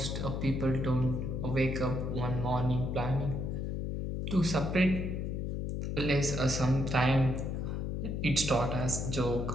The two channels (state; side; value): noise; left; hum, 2 dB below the sound